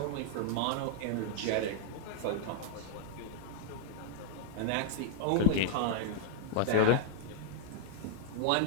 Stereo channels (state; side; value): different; both; correlation -0.01